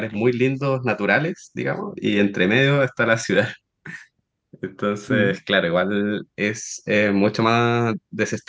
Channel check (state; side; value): identical; both; correlation 1.00